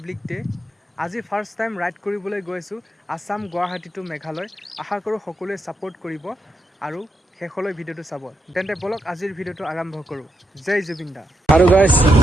ডে'। আজি ফাৰ্ষ্ট টাইম ৰাইড কৰিবলৈ গৈছোঁ আছাম গুৱাহাটী টু মেঘালয়। আশা কৰোঁ সকলোৱে ছাপোৰ্ট কৰিব আৰু শেষলৈ ভিডিঅ'টো চাব। তেন্তে বলক আজিৰ ভিডিঅ'টো আৰম্ভ কৰোঁ। জয় জুবিন দা। আৰু গাইজ,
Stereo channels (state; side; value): normal; both; correlation 0.83